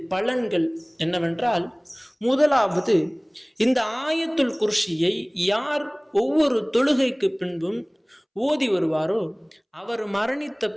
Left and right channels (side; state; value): both; identical; correlation 1.00